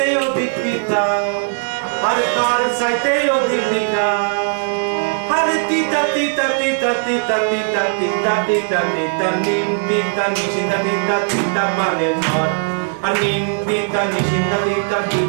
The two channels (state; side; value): silent; left; digital silence